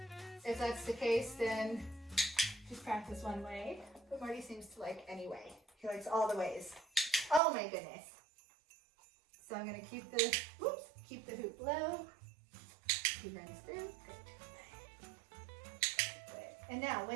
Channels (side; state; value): left; drops out; at 7.4 s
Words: if that's the case, then just practice one way. But Marty seems to like any way. He likes all the ways. Oh my goodness. So I'm gonna keep the hoop low. He runs through, good. And now